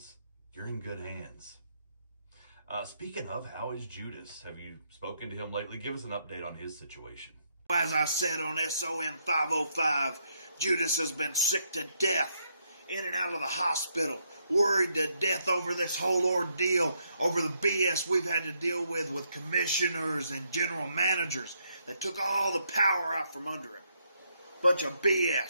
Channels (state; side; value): inverted; both; correlation -0.76